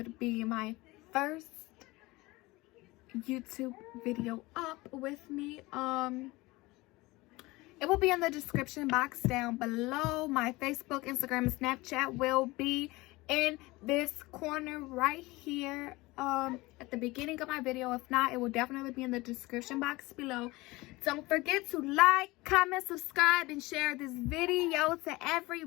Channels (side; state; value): right; quieter; 21.4 dB